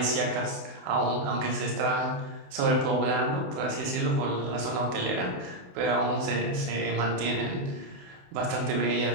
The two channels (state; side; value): late; left; 28 ms